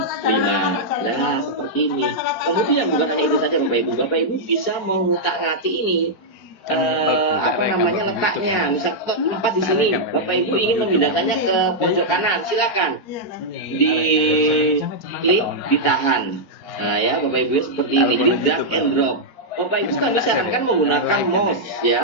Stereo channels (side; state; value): right; late; 4.4 ms